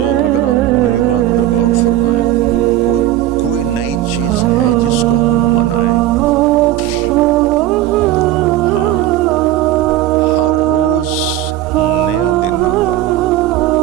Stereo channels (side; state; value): left; quieter; 13.5 dB